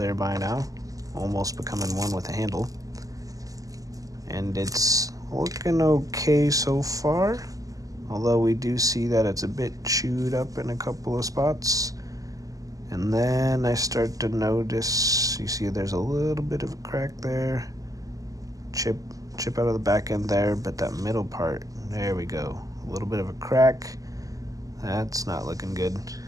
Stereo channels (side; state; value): left; late; 0.17 ms